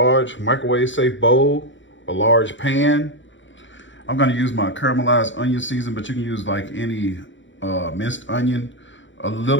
microwave safe bowl, a large pan. I'm gonna use my caramelized onion season, but you can use like any minced onion, a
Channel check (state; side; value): late; right; 0.55 ms